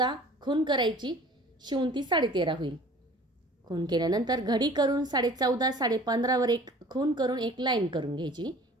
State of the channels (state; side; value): normal; both; correlation 0.47